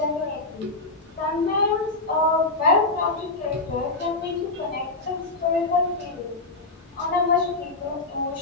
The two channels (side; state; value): right; quieter; 3.3 dB